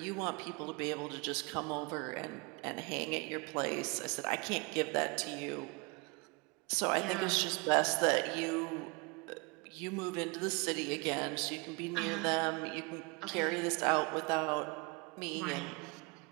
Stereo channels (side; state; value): left; quieter; 28.4 dB